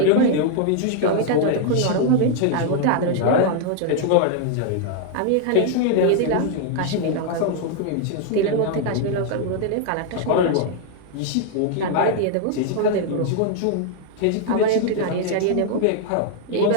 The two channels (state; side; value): different; both; correlation 0.00